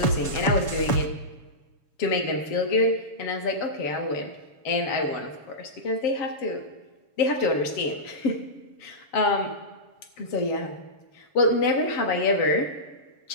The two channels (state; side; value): late; right; 7.0 ms